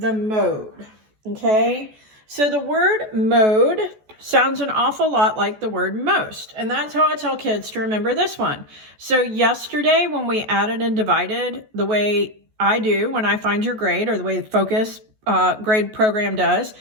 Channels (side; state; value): left; late; 14 ms